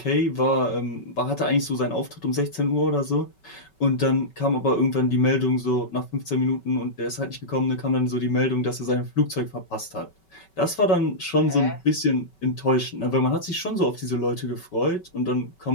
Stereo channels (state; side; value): late; right; 5.3 ms